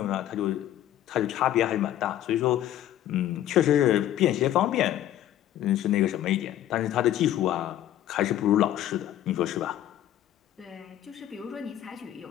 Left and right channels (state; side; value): quieter; right; 12.3 dB